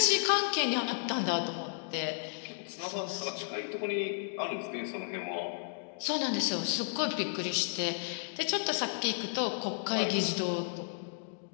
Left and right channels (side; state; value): right; silent; digital silence